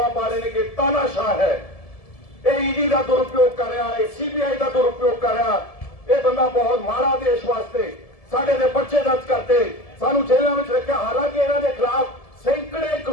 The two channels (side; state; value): right; late; 1.7 ms